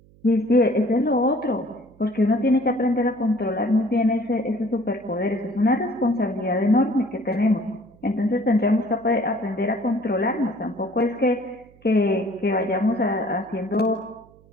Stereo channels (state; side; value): noise; right; hum, 28 dB below the sound